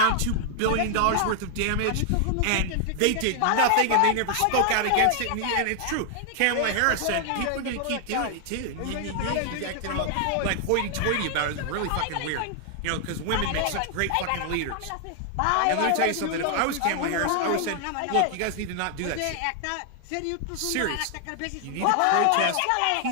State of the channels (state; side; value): different; both; correlation 0.00